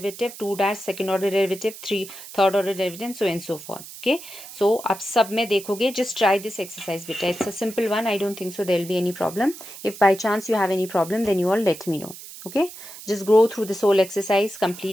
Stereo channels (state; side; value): noise; right; hiss, 14 dB below the sound